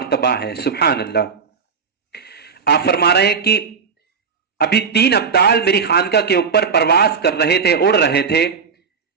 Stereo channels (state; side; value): quieter; left; 5.8 dB